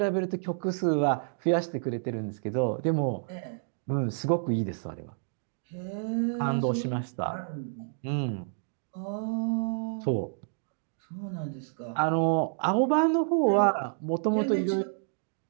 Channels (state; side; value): silent; left; digital silence